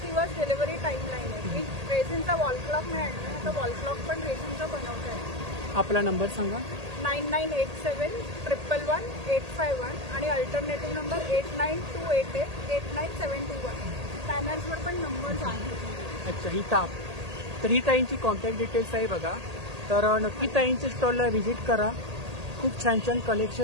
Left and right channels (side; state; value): left; late; 1.8 ms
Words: दिवस डिलिव्हरी टाइम लाईन आहे. मी रेझिनचा वॉल क्लॉक नाही आणला. आता वॉल क्लॉक पण रेझिनचा बनवत आहे. आपला नंबर सांगा. 9987 111 851 आणि अल्टरनेटिव्ह नंबर 89288 89721. पॅनर्सवर पण नंबर्स आहेत. अच्छा, ही ताप. तर ही ताईंची कॉन्टॅक्ट डिटेल्स आहे बघा. तर नक्की ताईंच्या स्टॉलला व्हिजिट करा. खूप छान छान